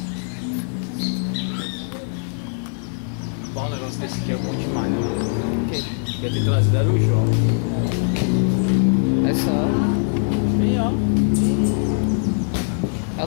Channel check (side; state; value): right; silent; 57 dB below the other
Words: Bom, um negócio desse aqui é bom demais, né? Quer ter trazido era o João. É só. Bem, ó. É